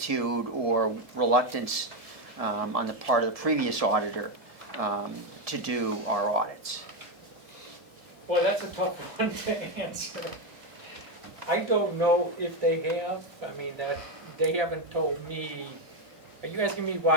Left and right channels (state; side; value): late; left; 1.7 ms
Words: or reluctance on the part of the previous auditor to do our audits. Well, that's a tough one to answer. I don't know if they have. I mean, that they haven't told me. Are you asking me